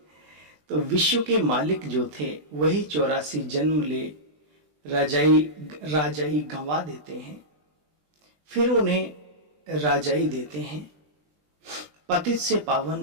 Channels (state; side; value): late; left; 20 ms